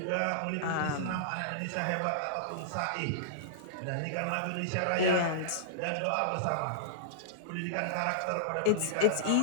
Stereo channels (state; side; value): different; both; correlation -0.02